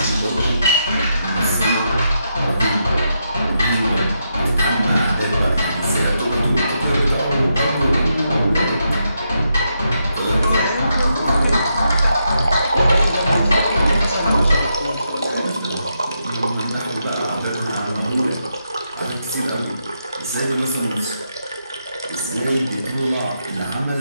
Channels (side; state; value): both; inverted; correlation -0.82